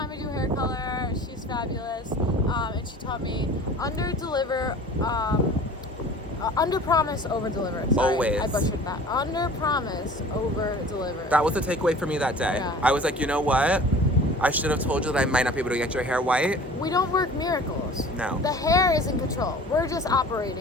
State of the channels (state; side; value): normal; both; correlation 0.44